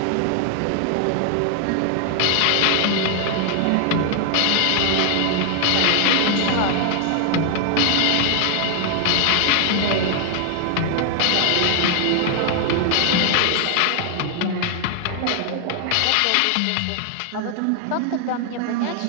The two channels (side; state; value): both; different; correlation 0.00